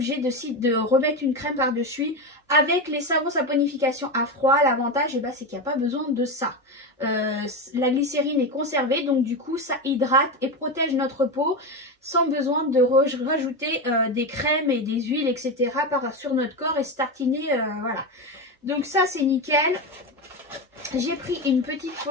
de remettre une crème par-dessus. Avec les savons saponification à froid, l'avantage c'est qu'il n'y a pas besoin de ça. La glycérine est conservée, donc du coup ça hydrate et protège notre peau sans besoin de rajouter des crèmes et des huiles, etc. sur notre corps et se tartiner, voilà. Donc ça c'est nickel. J'ai pris une petite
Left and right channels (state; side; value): normal; both; correlation 0.16